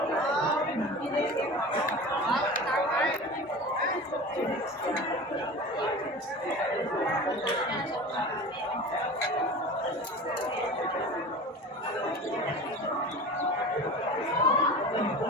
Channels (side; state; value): both; normal; correlation 0.34